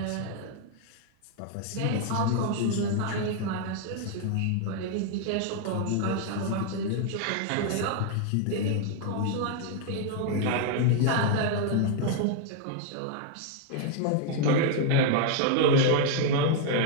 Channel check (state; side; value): different; both; correlation 0.00